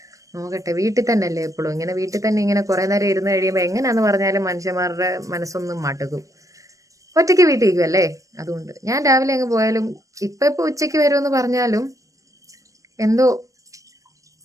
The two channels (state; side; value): late; left; 0.16 ms